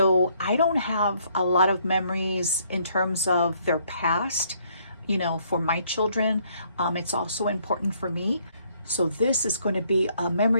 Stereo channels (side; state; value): both; inverted; correlation -0.67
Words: I don't have a lot of memories in terms of their past, for my children. It's also important for me. So this is going to be a